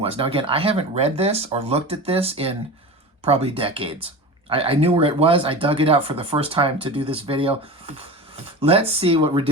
was. Now again, I haven't read this or looked at this in probably decades. I knew where it was. I dug it out for the first time to do this video. Let's see what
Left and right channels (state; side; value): normal; both; correlation 0.30